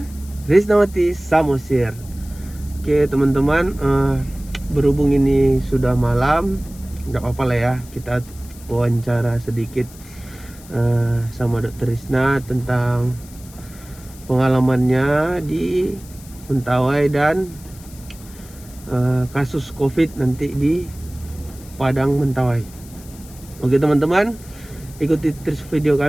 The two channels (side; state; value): left; noise; hiss, 21 dB below the sound